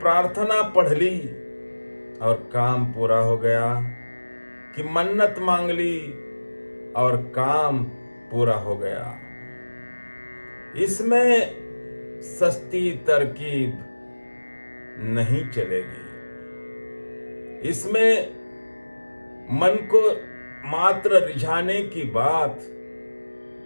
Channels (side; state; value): both; inverted; correlation -1.00